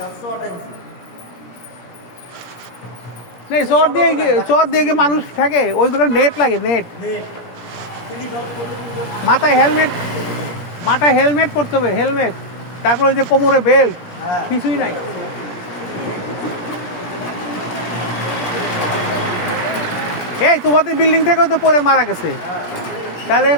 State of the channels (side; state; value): right; late; 17 ms